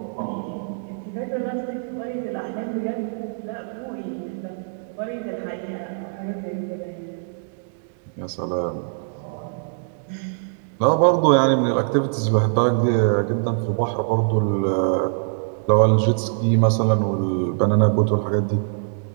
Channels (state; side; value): silent; left; digital silence